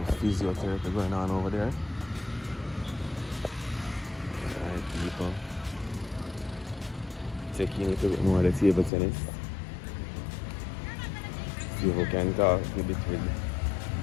physiotherapy going on over there. Alright, people. Taking a little bit more of the table tennis. See if we can talk a bit with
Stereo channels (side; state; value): right; drops out; at 8.9 s